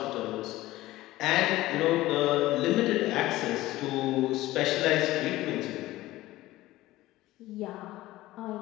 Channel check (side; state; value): right; quieter; 17.0 dB